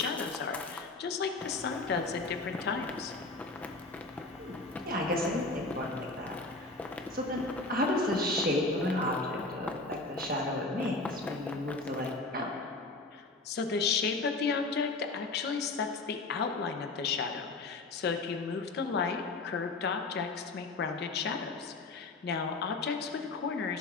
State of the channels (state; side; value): quieter; right; 3.3 dB